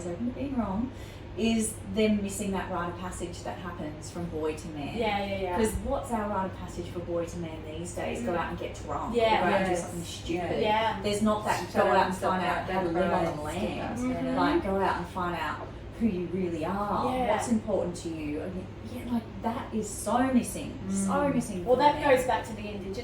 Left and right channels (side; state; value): both; identical; correlation 1.00